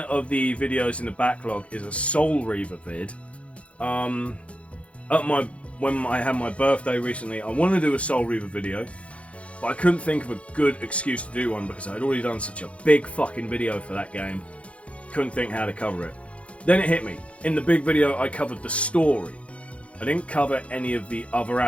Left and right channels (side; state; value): right; late; 0.062 ms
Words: of the videos in the backlog is a Soul Reaver vid. When I had my birthday recently, I wanted to do a Soul Reaver video, but I couldn't think of a good excuse to do one because I'd already done such a big fucking video for that game. Couldn't think how to cover it. Then it hit me. In the big video, I covered the story. I didn't cover any of the other